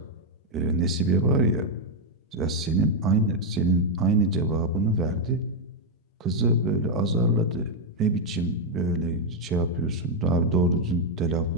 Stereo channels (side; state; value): both; normal; correlation 0.00